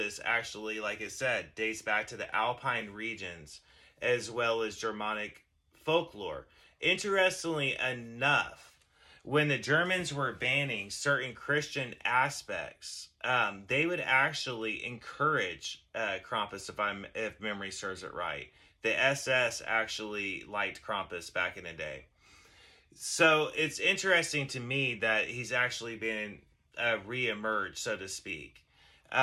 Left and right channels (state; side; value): identical; both; correlation 1.00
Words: actually, like I said, dates back to the Alpine regions as well as Germanic folklore. Interestingly enough, when the Germans were banning certain Christian aspects, they would actually encourage Krampus, if memory serves it right. The SS actually liked Krampus back in the day. So it's interesting to me that he's actually been re-emerged, so to speak.